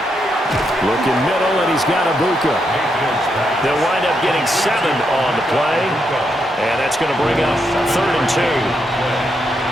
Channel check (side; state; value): both; normal; correlation 0.80